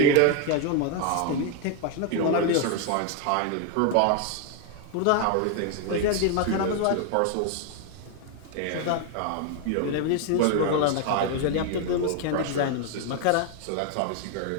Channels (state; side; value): different; both; correlation 0.01